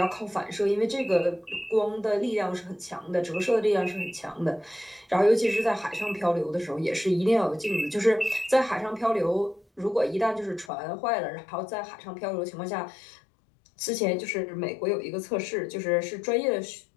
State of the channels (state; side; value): drops out; right; at 10.7 s